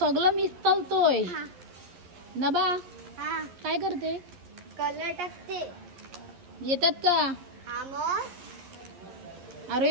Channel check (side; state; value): left; late; 11 ms